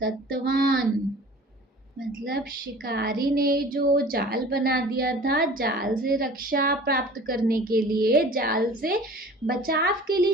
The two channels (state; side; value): normal; both; correlation 0.44